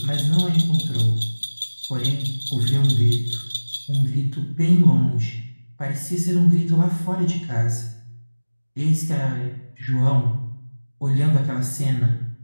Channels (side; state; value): both; inverted; correlation -1.00